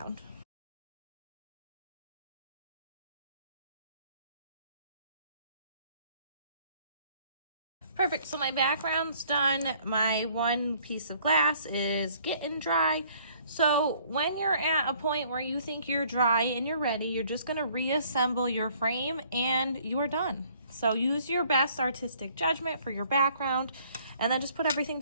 Perfect, so my background's done. My one piece of glass is getting dry. So when you're at a point where you think you're dry and you're ready, you're just gonna reassemble your frame and you're done. So use your best artistic judgment for your background and then just put everything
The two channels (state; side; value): inverted; both; correlation -0.60